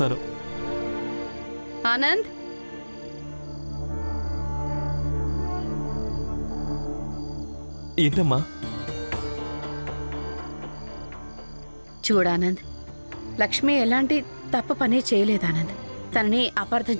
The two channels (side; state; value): both; inverted; correlation -1.00